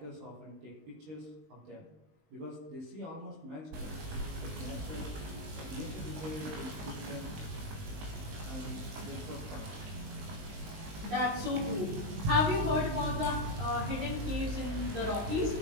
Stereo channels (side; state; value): left; late; 19 ms